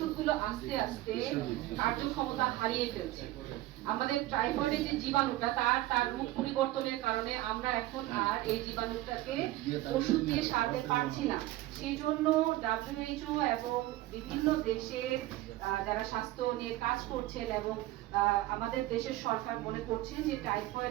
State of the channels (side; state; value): left; quieter; 16.7 dB